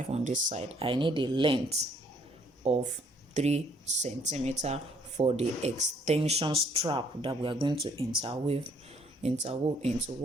on this side. I need a length of 3 centimeter for the extension strap that we are going to interweave into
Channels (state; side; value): normal; both; correlation 0.64